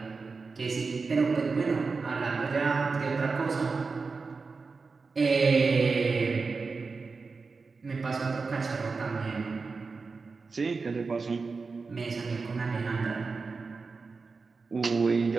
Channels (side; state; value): left; quieter; 4.4 dB